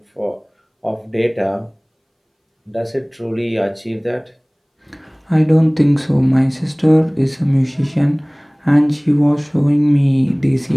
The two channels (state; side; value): identical; both; correlation 1.00